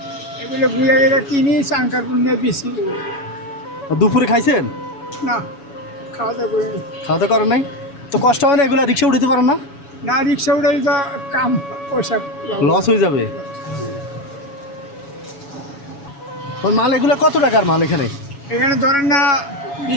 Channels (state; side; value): late; right; 7.1 ms